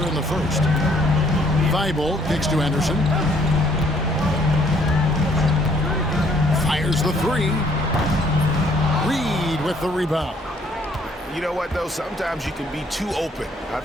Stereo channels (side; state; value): both; normal; correlation 0.64